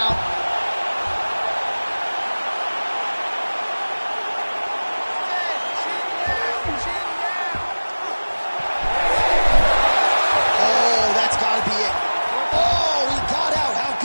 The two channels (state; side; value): inverted; both; correlation -1.00